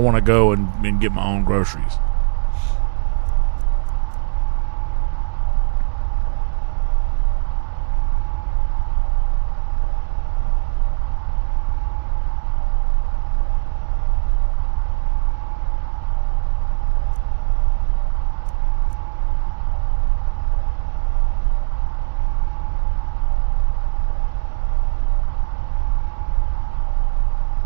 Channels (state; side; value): silent; left; digital silence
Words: to go and get my own groceries.